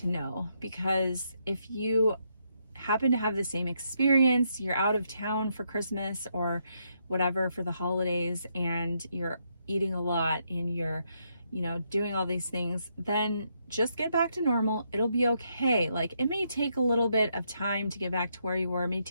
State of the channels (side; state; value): both; inverted; correlation -0.78